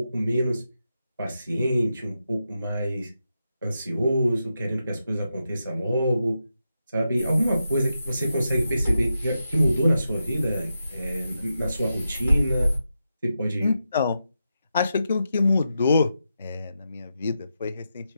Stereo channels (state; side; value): inverted; both; correlation -0.87